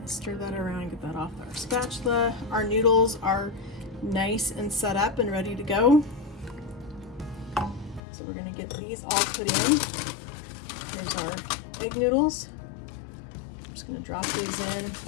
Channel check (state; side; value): drops out; right; at 8.0 s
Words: stir that around and get that off our spatula. Our noodles are nice and set up and ready to go. So we're gonna get these all put in. Here's our egg noodles. Just gonna drop these in.